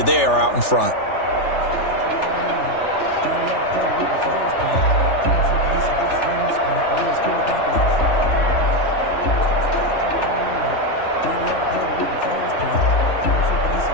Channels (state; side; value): late; right; 3.4 ms